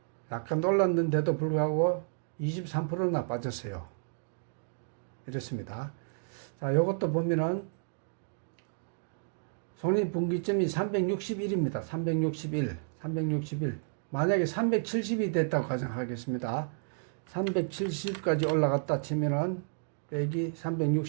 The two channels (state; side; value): silent; left; digital silence